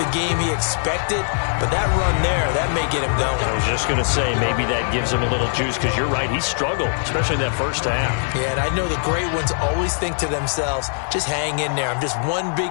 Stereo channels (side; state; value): right; silent; 55 dB below the other